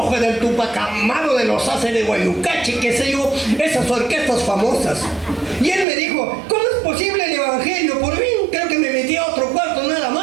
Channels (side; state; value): left; drops out; at 5.9 s